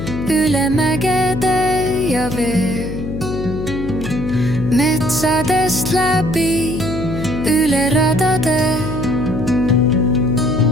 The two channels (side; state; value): left; noise; hum, 7 dB below the sound